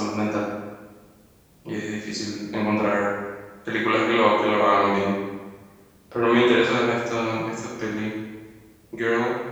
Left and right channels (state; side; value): identical; both; correlation 1.00